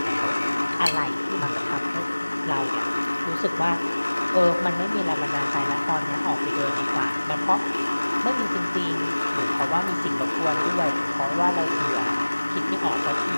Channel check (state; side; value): inverted; both; correlation -1.00